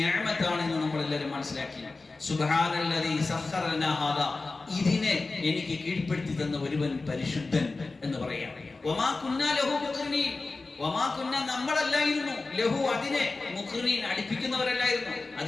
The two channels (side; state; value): right; quieter; 3.6 dB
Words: എന്ന് നമ്മൾ എല്ലാവരും മനസ്സിലാക്കി. സുബ്ഹാനല്ലദീ സഖറ ലനാ ഹാദാ, ഇതിനെ എനിക്ക് കീഴ്പ്പെടുത്തി തന്ന ഒരുവൻ പരിശുദ്ധൻ എന്ന് പറയാം. വമാ കുന്നാ ലഹു മുഖ്രിനീൻ, വമാ കുന്നാ, നമ്മളല്ലായിരുന്നു, ലഹു അതിനെ, മുഖ്രിനീൻ അടുപ്പിക്കുന്നവരല്ലായിരുന്നു.